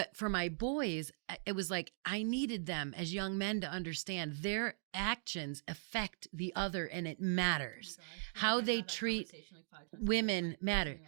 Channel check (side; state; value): left; silent; digital silence